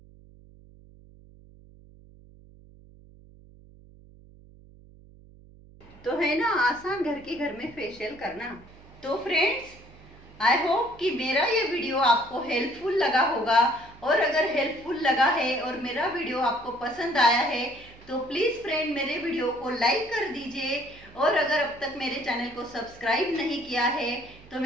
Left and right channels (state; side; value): noise; right; hum, 23 dB below the sound